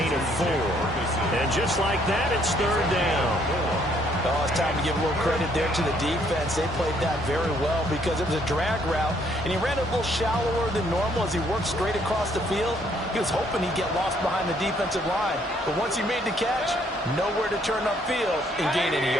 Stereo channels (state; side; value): normal; both; correlation 0.67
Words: of 4. And just like that, it's 3rd down. Oh, it's time to give a little credit there to the defense. They played that very well because it was a drag route, and he ran a little shallower than normal as he worked straight across the field. He was hoping he'd get lost behind the defensive line. But once he made the catch, nowhere to turn upfield and gain any